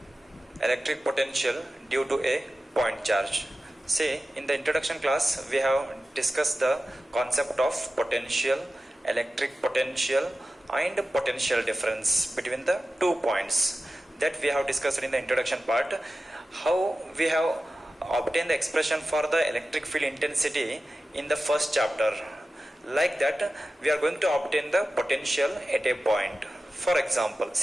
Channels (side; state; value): both; normal; correlation 0.94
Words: electric potential due to a point charge. See, in the introduction class we have discussed the concept of potential, electric potential and potential difference between the 2 points that we have discussed in the introduction part. How we have obtained the expression for the electric field intensity in the first chapter. Like that, we are going to obtain the potential at a point. For example,